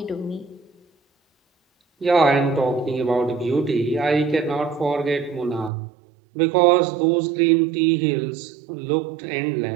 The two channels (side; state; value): left; drops out; at 5.7 s